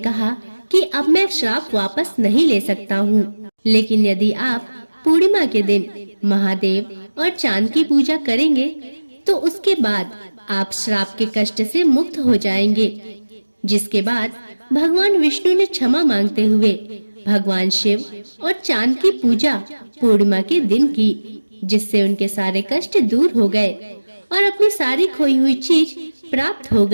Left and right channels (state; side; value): inverted; both; correlation -1.00